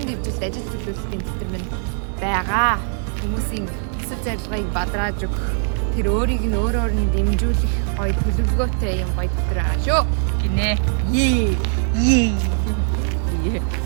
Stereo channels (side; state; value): left; silent; 64 dB below the other